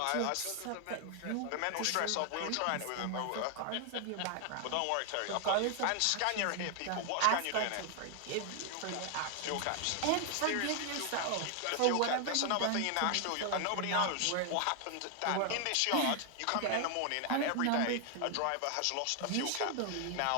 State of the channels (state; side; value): different; both; correlation 0.00